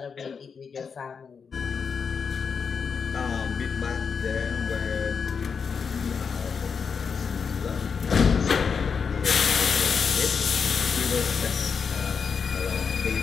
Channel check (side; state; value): right; quieter; 6.0 dB